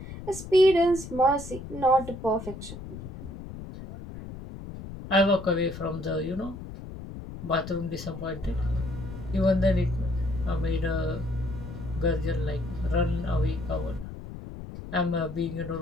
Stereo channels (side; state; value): left; noise; rumble, 11 dB below the sound